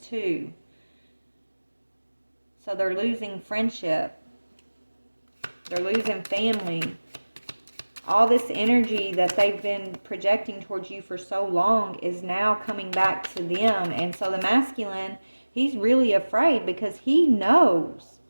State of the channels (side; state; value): both; inverted; correlation -1.00